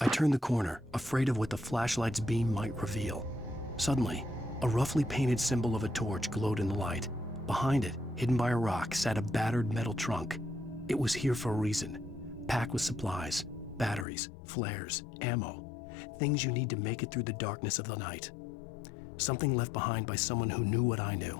turned the corner, afraid of what the flashlight's beam might reveal. Suddenly, a roughly painted symbol of a torch glowed in the light. Behind it, hidden by a rock, sat a battered metal trunk. It was here for a reason, packed with supplies, batteries, flares, ammo, things you need to make it through the darkness of the night. Something left behind by someone who knew what I knew,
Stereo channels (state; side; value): drops out; right; at 14.1 s